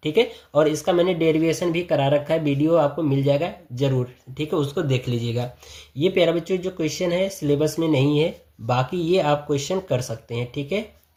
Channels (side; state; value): both; identical; correlation 1.00